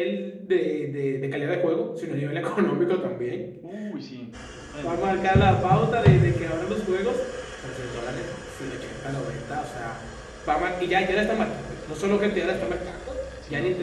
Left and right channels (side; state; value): both; identical; correlation 1.00